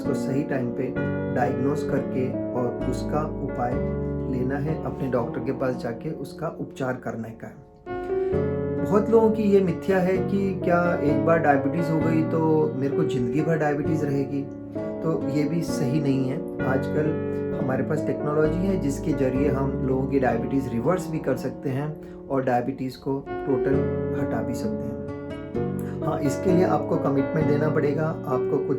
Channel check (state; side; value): identical; both; correlation 1.00